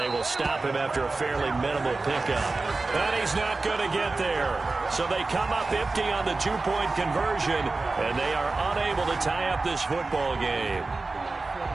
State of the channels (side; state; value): left; quieter; 3.5 dB